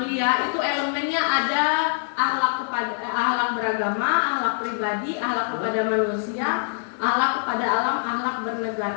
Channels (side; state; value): right; silent; digital silence